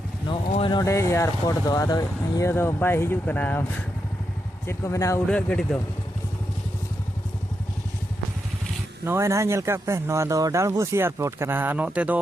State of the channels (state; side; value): normal; both; correlation 0.84